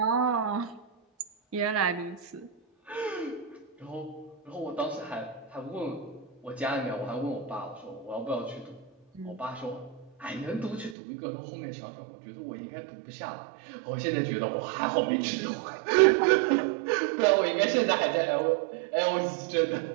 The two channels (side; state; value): left; drops out; at 11.0 s